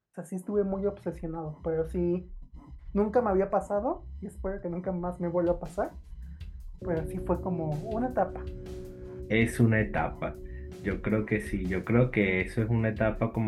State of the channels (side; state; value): both; identical; correlation 1.00